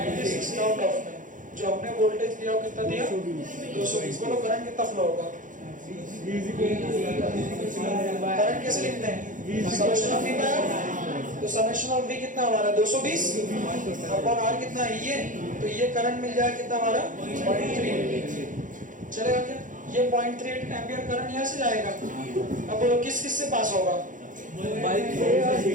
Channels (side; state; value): left; late; 0.38 ms